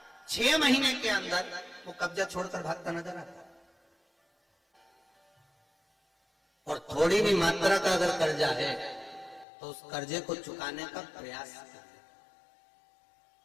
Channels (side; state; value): right; drops out; at 9.5 s